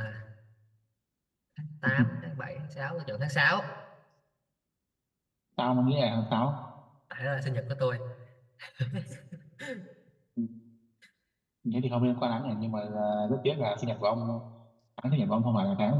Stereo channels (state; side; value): identical; both; correlation 1.00